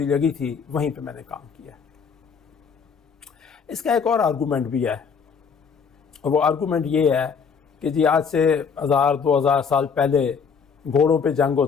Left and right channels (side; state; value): right; quieter; 6.1 dB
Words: لگی تھی وہیں پہ میں نے کام کیا۔ اس کا ایک اور آرگومنٹ بھی ہے، اور وہ آرگومنٹ یہ ہے کہ جی آج سے 1000-2000 سال پہلے گھوڑوں پہ جنگ